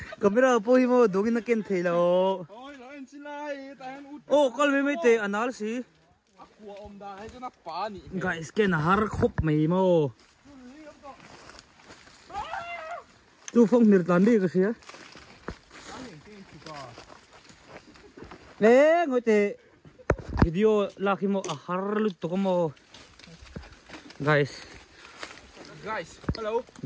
camera po mo dogin na ken thelo ôi nó anh xin lại ta hay út oh kal me te anal si aqua om da hay cho nó phá nhỉ guys ken har khop mai mo tu phong nir tan đi cái gì nè ngồi te video laki mo har lut to mo guys hello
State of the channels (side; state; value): both; identical; correlation 1.00